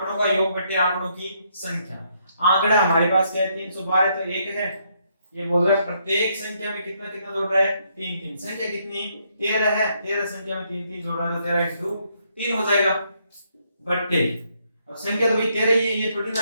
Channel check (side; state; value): both; inverted; correlation -0.73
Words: का योग बटे आंकड़ों की संख्या। आंकड़ा हमारे पास क्या है, 312, तो 1 है। ये बोल रहा है प्रत्येक संख्या में कितना कितना जोड़ रहा है, 3 3। संख्या कितनी, 13 है, 13 संख्या में 3 3 जोड़ रहा है, तो 13 × 3 हो जाएगा बट्टे। अब संख्या तो भाई 13 ही है, ये थोड़ी